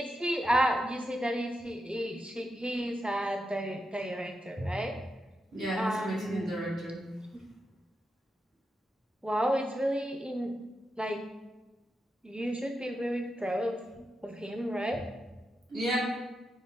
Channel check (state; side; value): normal; both; correlation 0.87